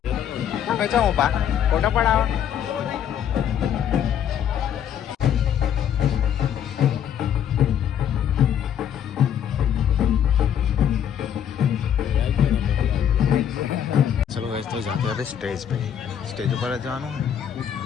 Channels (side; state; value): right; quieter; 9.2 dB